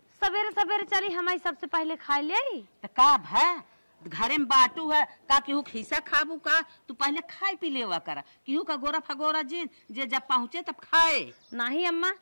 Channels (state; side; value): inverted; both; correlation -1.00